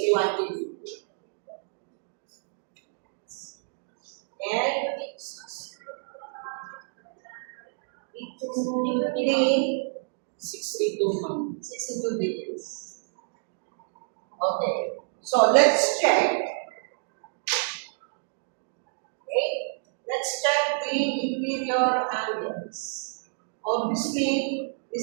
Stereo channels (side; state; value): left; silent; digital silence